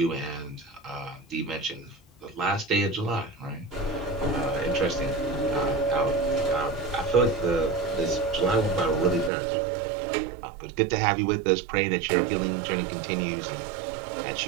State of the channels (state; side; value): drops out; left; at 9.3 s